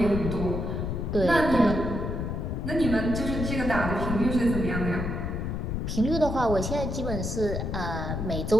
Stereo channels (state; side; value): noise; left; rumble, 2 dB below the sound